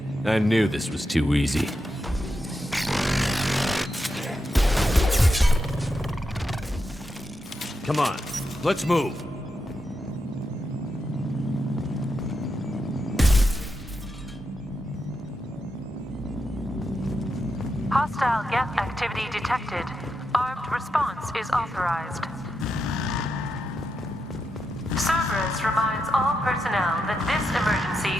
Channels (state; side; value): normal; both; correlation 0.86